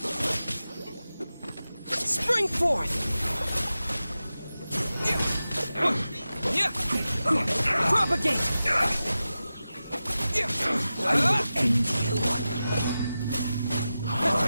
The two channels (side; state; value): both; inverted; correlation -0.94